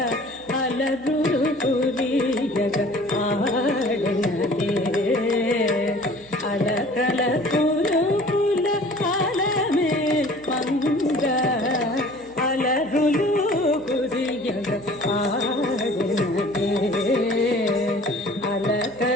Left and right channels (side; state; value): right; noise; hum, 26 dB below the sound